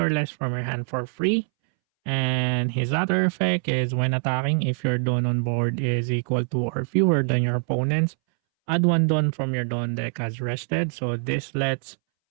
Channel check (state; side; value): silent; left; 62 dB below the other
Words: less from your hand for free. And his other effect is when attacking, if your Dawn on board is equal to or fewer than your opponent's, add one Dawn from your Dawn deck as rested. So this lets